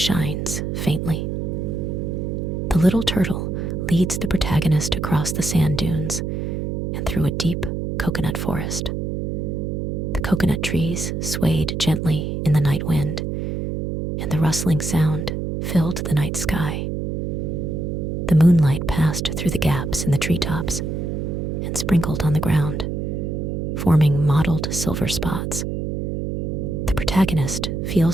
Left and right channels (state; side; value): noise; right; hum, 2 dB below the sound